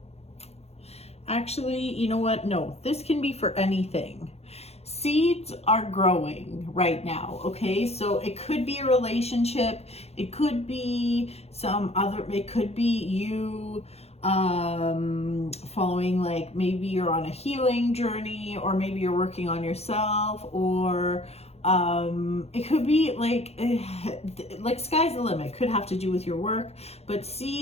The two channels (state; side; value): late; right; 0.30 ms